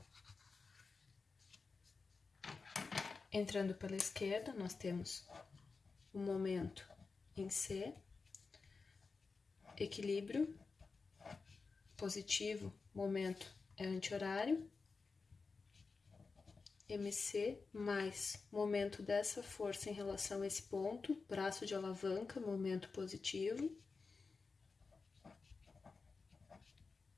Entrando pela esquerda, nós temos o momento em C, equilíbrio, positivo, momento é anti-horário, MC mais momento dessa força em relação a esse ponto, braço de alavanca, momento positivo.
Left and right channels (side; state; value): right; quieter; 4.4 dB